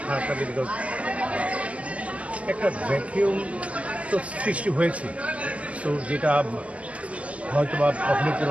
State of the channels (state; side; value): late; left; 0.066 ms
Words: খারাপ লাগে। বিকজ একটা ভ্যাকিউম তো সৃষ্টি হয়েছে, তো যেটা হয়তো বা কখনোই